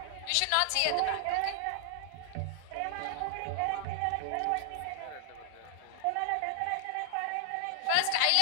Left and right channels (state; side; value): different; both; correlation 0.00